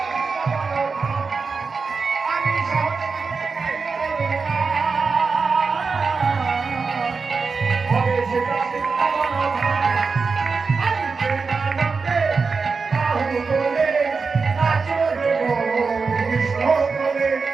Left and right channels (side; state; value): left; quieter; 4.7 dB